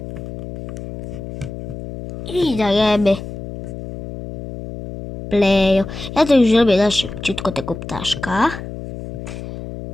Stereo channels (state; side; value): noise; left; hum, 10 dB below the sound